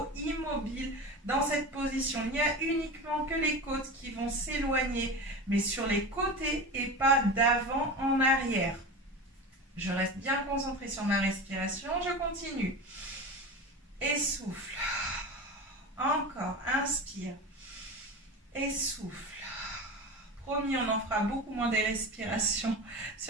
immobile dans cette position. Il n'y a uniquement que les côtes qui vont s'éloigner, mais sur les côtés et pas d'avant en arrière. Je reste bien concentrée sur ma respiration. Je continue. Et souffle. Encore. Inspire. Et souffle. Promis, on en fera beaucoup moins des respirations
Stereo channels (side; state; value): both; normal; correlation 0.28